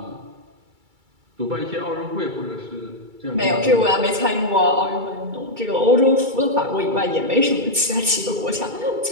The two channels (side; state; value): left; late; 2.3 ms